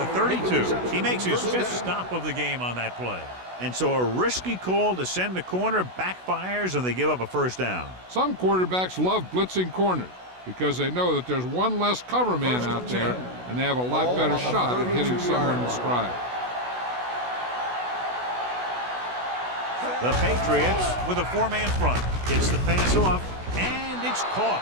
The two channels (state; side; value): late; left; 16 ms